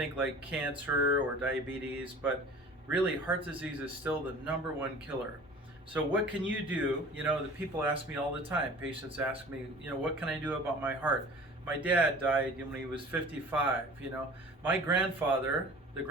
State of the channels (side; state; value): both; normal; correlation 0.43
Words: like cancer or diabetes, but really heart disease is still the #1 killer. So what can you do? The people ask me all the time, patients ask me, what can I do about my heart? My dad died when he was 55, My grandfather, the